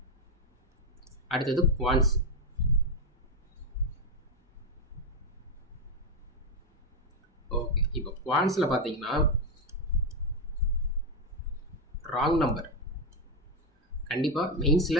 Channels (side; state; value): both; normal; correlation 0.03